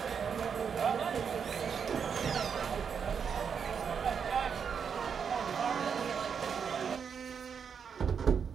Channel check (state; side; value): quieter; left; 6.8 dB